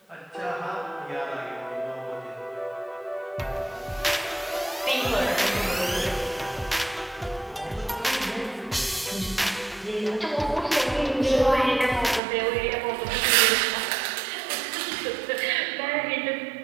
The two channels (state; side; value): drops out; left; at 12.2 s